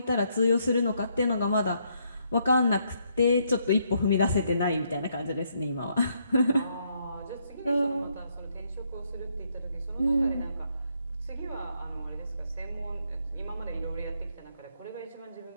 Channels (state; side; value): inverted; both; correlation -0.74